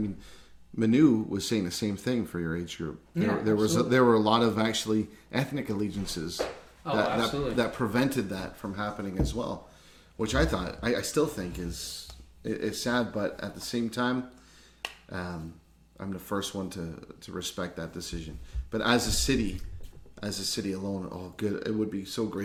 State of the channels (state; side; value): identical; both; correlation 1.00